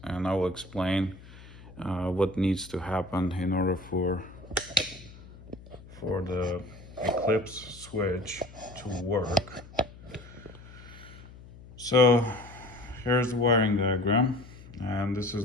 and I will explain what needs to happen in order for the Eclipse switch to work. So here's the wiring diagram, and this is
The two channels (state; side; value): noise; left; hum, 19 dB below the sound